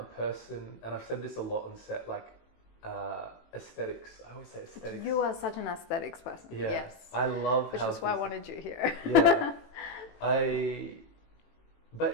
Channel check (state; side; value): late; right; 18 ms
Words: person, and I've said this a lot on set, like aesthetics. I always say aesthetics. You are such an aesthetics person. Yeah. Yes. I love Which is why I wanted you here. Yeah.